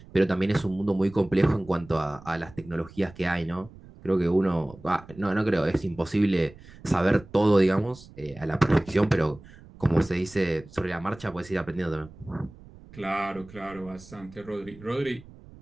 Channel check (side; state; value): right; noise; rumble, 21 dB below the sound